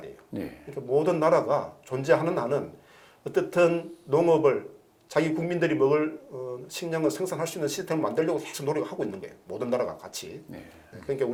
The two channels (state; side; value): identical; both; correlation 1.00